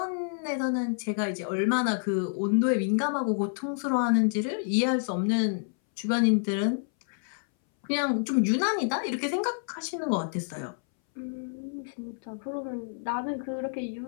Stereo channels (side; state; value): right; silent; 59 dB below the other